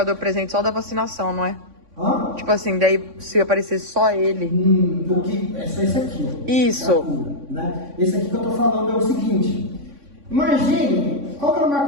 presente só da vacinação, não é? Hã? Tipo assim, daí se aparecer só ele. Porque é só esse aqui, ó. Isso. Né? Esse aqui que eu tô falando é o seguinte. Imagine, qual que era o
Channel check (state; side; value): late; left; 3.6 ms